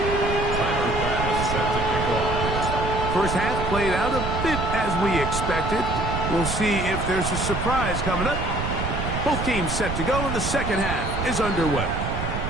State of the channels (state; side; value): noise; right; rumble, 3 dB below the sound